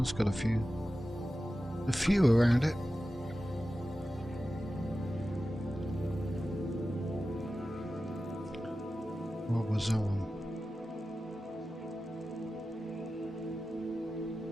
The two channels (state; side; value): normal; both; correlation 0.94